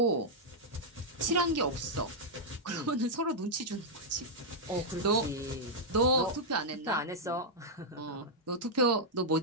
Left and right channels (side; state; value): both; normal; correlation -0.05